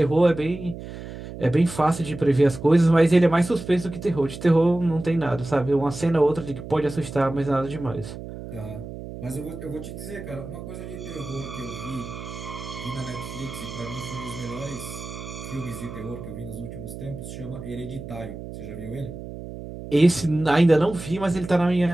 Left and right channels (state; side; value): noise; right; hum, 11 dB below the sound